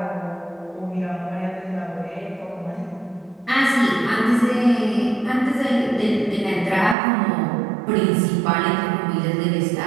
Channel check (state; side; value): drops out; left; at 7.0 s